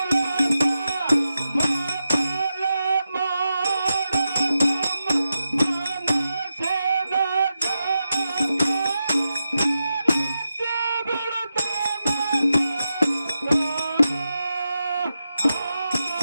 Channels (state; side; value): inverted; both; correlation -0.89